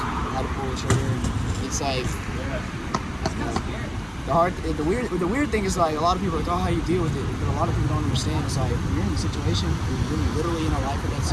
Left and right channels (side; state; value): both; identical; correlation 1.00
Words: had to pull the trigger. And it's like the weird thing is like a lot of people are like, oh, how you deal with it? But a lot of people don't understand. It's like when you're in the situation, you're literally in a life of that